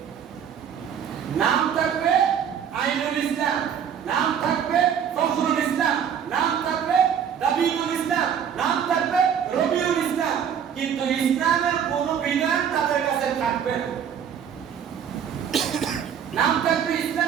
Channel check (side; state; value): left; quieter; 8.3 dB